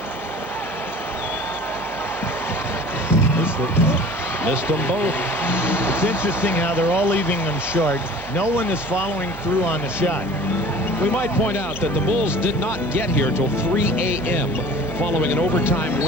Missed them both. It's interesting how they're all leaving them short. No one is following through on the shot. We might point out that the Bulls did not get here till 3 a.m. following an overtime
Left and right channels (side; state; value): both; normal; correlation 0.44